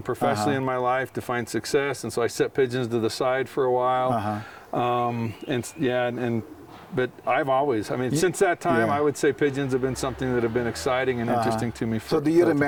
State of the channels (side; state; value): both; identical; correlation 1.00